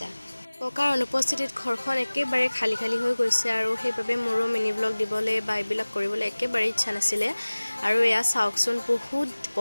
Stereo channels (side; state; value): both; inverted; correlation -1.00